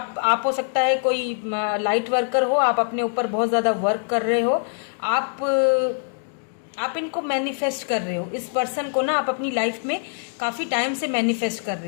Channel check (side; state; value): right; silent; digital silence